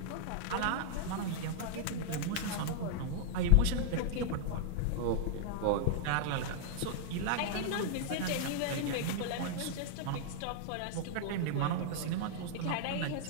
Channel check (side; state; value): both; different; correlation -0.01